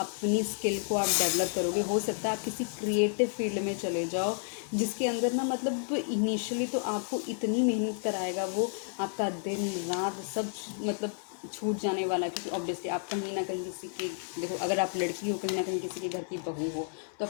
स्किल को आप डेवलप करोगे। हो सकता है आप किसी क्रिएटिव फील्ड में चले जाओ, जिसके अंदर ना मतलब इनिशियली तो आपको इतनी मेहनत कराएगा वो, आपका दिन रात सब मतलब छूट जाने वाला है, क्योंकि ऑब्वियसली आप कहीं ना कहीं किसी की, देखो अगर आप लड़की हो, कहीं ना कहीं किसी के घर की बहू हो, तो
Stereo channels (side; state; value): right; silent; digital silence